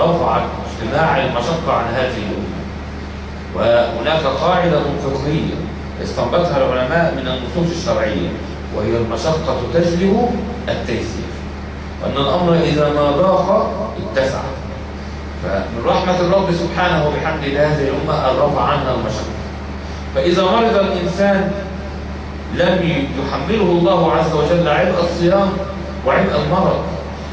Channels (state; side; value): identical; both; correlation 1.00